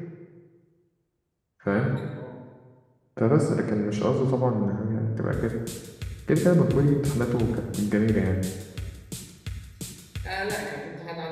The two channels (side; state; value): both; identical; correlation 1.00